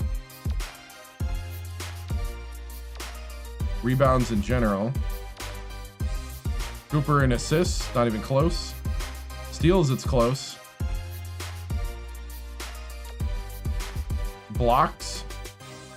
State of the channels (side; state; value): both; identical; correlation 1.00